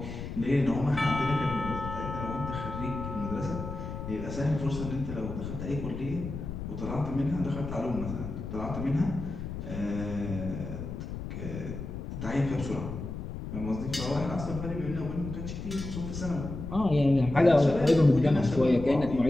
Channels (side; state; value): left; noise; rumble, 7 dB below the sound